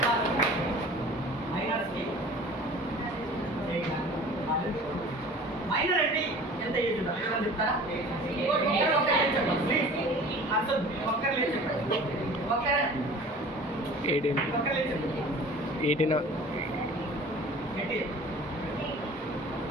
మైనర్ అంటే ఎంత ఏజ్ ఉండాలి చెప్తారా? ఒక్కరు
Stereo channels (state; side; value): normal; both; correlation 0.44